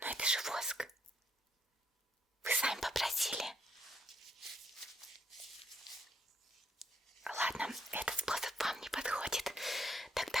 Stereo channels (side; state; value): both; normal; correlation 0.72